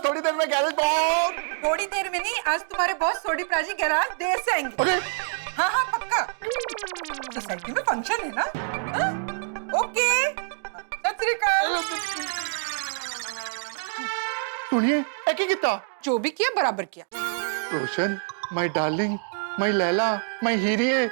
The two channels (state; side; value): silent; left; digital silence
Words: थोड़ी देर में गैरेज पहुंच। थोड़ी देर में नहीं, आज तुम्हारे बॉस सोडी प्राजी गैराज देर से आएंगे। अरे हाँ हाँ पक्का, सोसाइटी में फंक्शन है ना। हाँ? ओके, सत श्री अकाल। सुनिए, एकी कितना जो भी किया बराबर किया। Roshan, my darling, my Laila, my हीरिये,